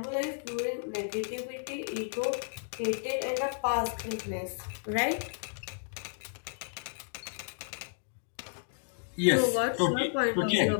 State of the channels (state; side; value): silent; right; digital silence